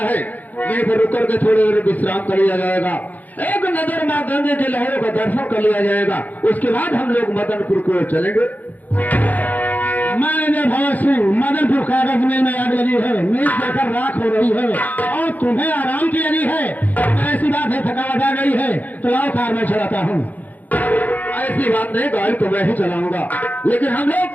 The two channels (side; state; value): right; late; 0.081 ms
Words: है, यहीं पर रुक करके थोड़ी देर विश्राम कर लिया जाएगा, एक नजर माँ गंगे की लहरों का दर्शन कर लिया जाएगा, उसके बाद हम लोग मदनपुर की ओर चलेंगे। मैनेजर भगत सिंह, मदनपुर कागज मिल में आग लगी है, मिल जलकर राख हो रही है और तुम्हें आराम की लगी है। ऐसी बात है, थकावट आ गई है तो लाओ कार में चलाता हूँ। ऐसी बात नहीं, गाड़ी तो मैं ही चलाऊंगा, लेकिन हम